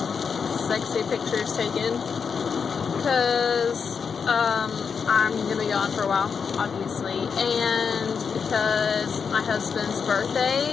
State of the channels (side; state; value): right; quieter; 6.1 dB